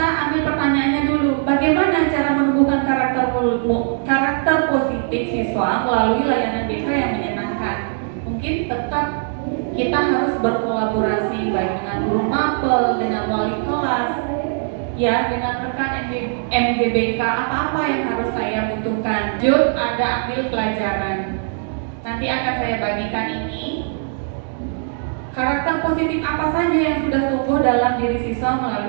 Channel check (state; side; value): silent; left; digital silence